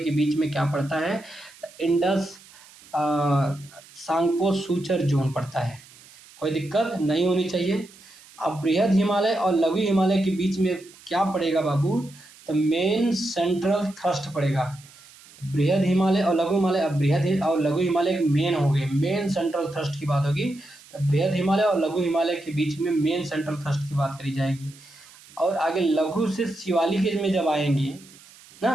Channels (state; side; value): noise; right; hiss, 23 dB below the sound